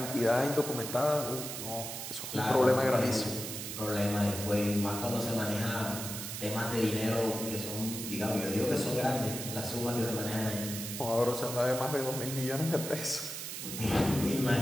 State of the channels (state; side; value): noise; right; hiss, 6 dB below the sound